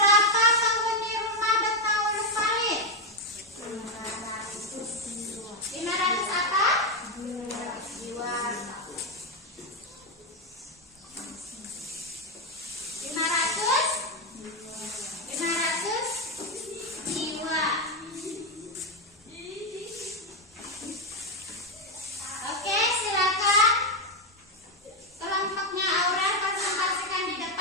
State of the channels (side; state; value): both; normal; correlation 0.06